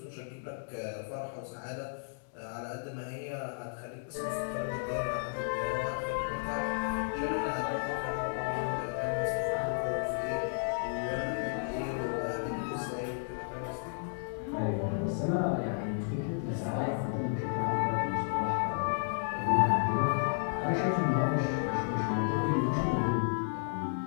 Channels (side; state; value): right; silent; digital silence